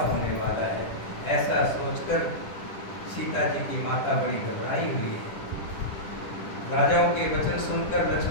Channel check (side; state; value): right; late; 10 ms